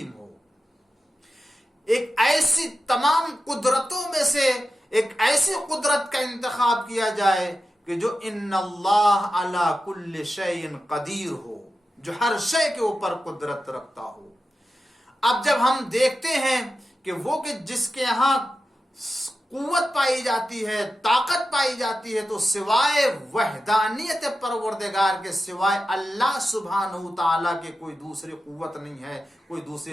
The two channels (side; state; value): both; normal; correlation 0.91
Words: ہو. ایک ایسی تمام قدرتوں میں سے ایک ایسی قدرت کا انتخاب کیا جائے کہ جو ان اللہ علی کل شیء قدیر ہو، جو ہر شے کے اوپر قدرت رکھتا ہو. اب جب ہم دیکھتے ہیں کہ وہ کہ جس کے ہاں قوت پائی جاتی ہے، طاقت پائی جاتی ہے، تو سوائے وحدانیت پروردگار کے، سوائے اللہ سبحانہ تعالیٰ کے کوئی دوسری قوت نہیں ہے، کوئی